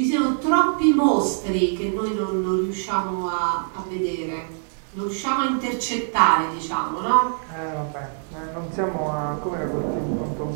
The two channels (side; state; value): left; silent; 63 dB below the other